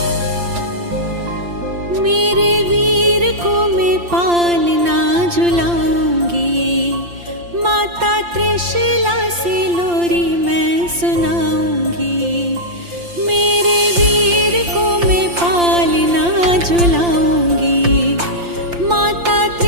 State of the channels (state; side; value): late; left; 5.8 ms